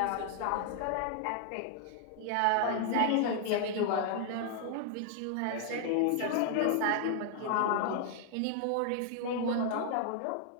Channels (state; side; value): different; both; correlation 0.00